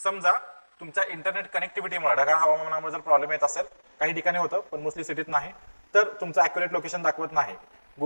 तुमच्या इंटरनेट कनेक्टिव्हिटीमुळे ढगाळ हवामानामुळे जर प्रॉब्लेम येत असेल, काही ठिकाणी होतं पण मोस्टली सिटीत नाही, तर तुमचं अॅक्युरेट लोकेशन दाखवत नाही.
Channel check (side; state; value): both; inverted; correlation -1.00